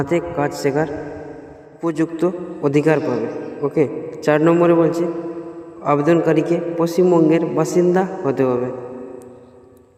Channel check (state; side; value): identical; both; correlation 1.00